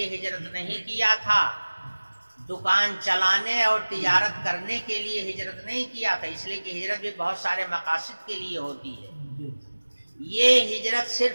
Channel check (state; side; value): inverted; both; correlation -1.00